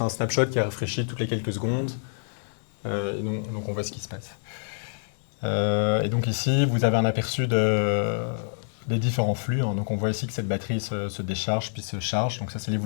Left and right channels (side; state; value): right; silent; digital silence